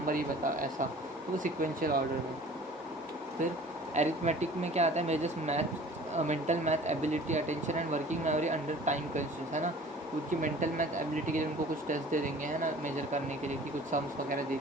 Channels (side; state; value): both; normal; correlation 0.46